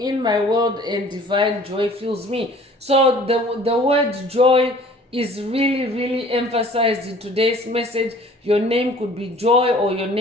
in my world and divine joy fills me. So the word joy is really, really emphasized in today's message. Your name could be Joy, or your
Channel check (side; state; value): both; normal; correlation 0.51